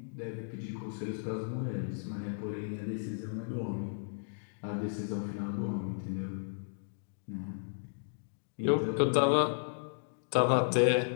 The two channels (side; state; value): right; silent; digital silence